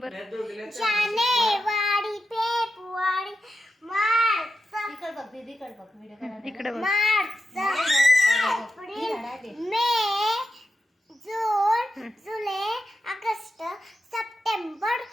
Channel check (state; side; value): normal; both; correlation 0.89